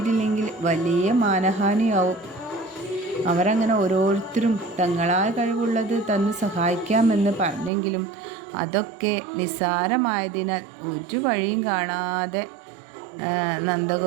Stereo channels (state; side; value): drops out; left; at 7.7 s